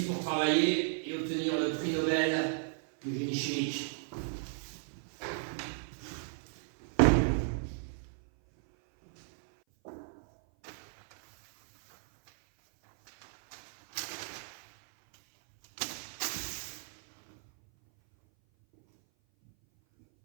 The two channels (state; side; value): silent; left; 55 dB below the other